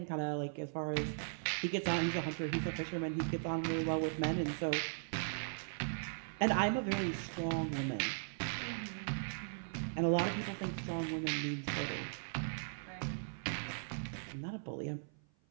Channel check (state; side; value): silent; left; 52 dB below the other